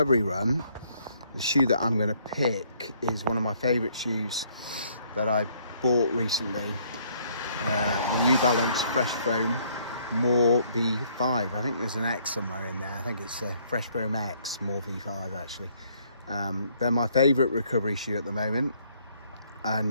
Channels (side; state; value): both; inverted; correlation -0.65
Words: run, the shoe that I'm going to pick is one of my favourite shoes that I bought recently, the New Balance Fresh Foam More V5. I think there's an X somewhere in there. I think it's a Fresh Foam X More V5 actually. They're my favourite recovery shoe at the moment,